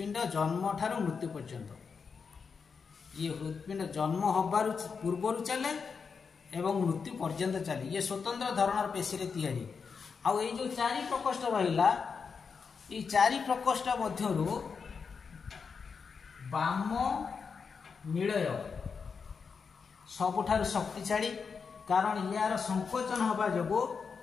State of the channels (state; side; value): quieter; right; 5.6 dB